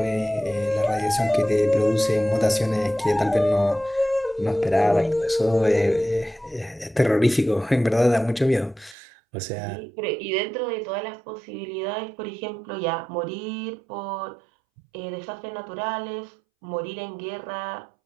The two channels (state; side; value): drops out; left; at 9.0 s